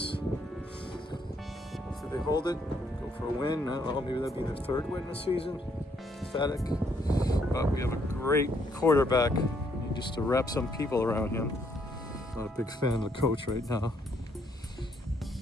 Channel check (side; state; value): both; normal; correlation 0.71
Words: So they hold it, go for a win. I don't know, maybe that'll be their third win this season. Pathetic. But we have a great quarterback. Need just to wrap some people around him. Not a big fan of the coach right now.